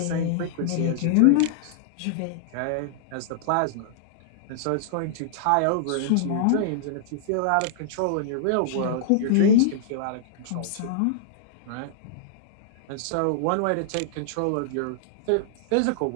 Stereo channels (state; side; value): different; both; correlation -0.02